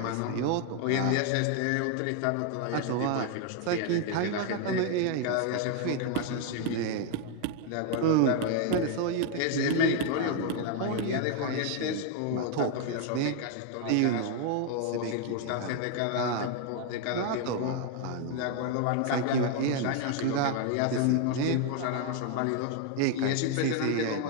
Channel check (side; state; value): both; different; correlation 0.01